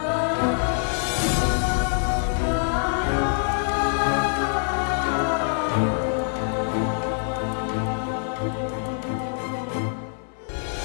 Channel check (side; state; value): right; silent; 62 dB below the other